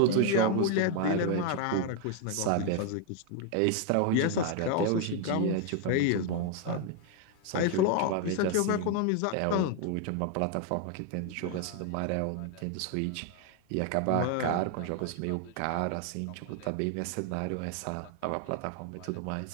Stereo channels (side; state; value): both; different; correlation 0.01